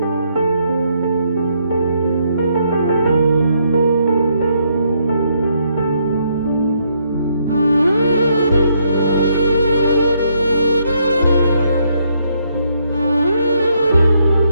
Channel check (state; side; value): inverted; both; correlation -0.73